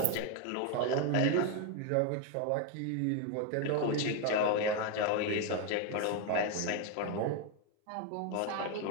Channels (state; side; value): different; both; correlation 0.01